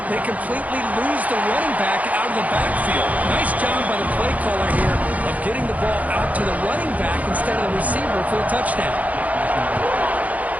they completely lose the running back out of the backfield. Nice job by the play caller here of getting the ball out to the running back instead of the receiver for the touchdown.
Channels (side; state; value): left; late; 0.073 ms